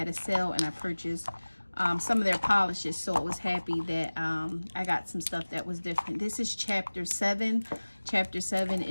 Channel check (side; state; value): both; inverted; correlation -1.00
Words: a sale, and I purchased some of their polishes, so I was happy that I got some stuff that was different. This is chapter 7. Chapter 7